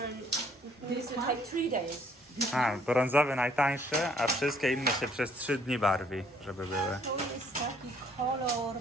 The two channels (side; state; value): both; normal; correlation 0.62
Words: this will take 3 days. A, brązowy najtańszy, a wszystkie inne się przez 3 dni barwi, żeby były. To jest taki kolor,